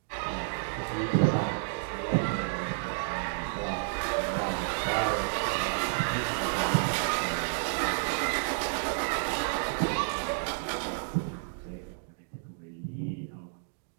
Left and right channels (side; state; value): left; silent; digital silence